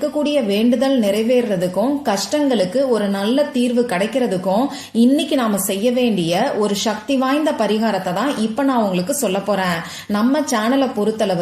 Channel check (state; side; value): identical; both; correlation 1.00